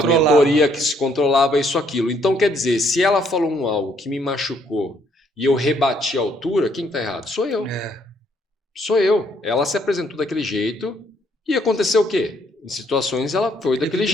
mentoria, que se controlava, isso, aquilo. Então, quer dizer, se ela falou algo que me machucou e eu rebati a altura, quem está errado? Sou eu. Sou eu. Ela se apresentou daquele jeito e aconteceu o quê? Em situações ela foi daquele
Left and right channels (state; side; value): normal; both; correlation 0.68